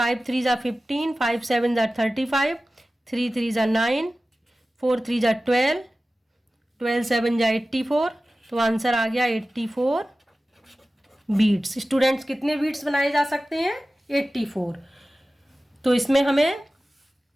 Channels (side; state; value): both; normal; correlation 0.96